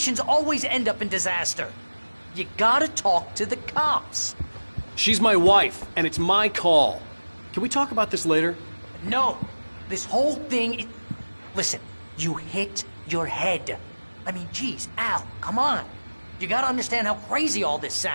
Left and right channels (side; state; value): both; inverted; correlation -1.00